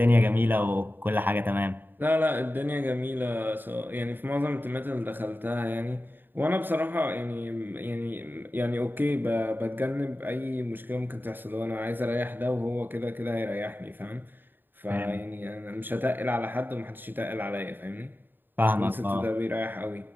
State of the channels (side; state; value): left; late; 0.093 ms